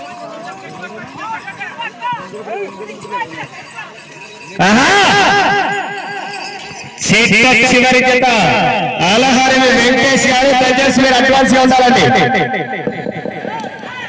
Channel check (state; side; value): identical; both; correlation 1.00